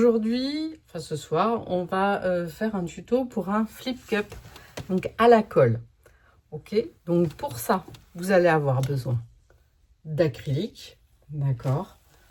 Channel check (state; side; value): identical; both; correlation 1.00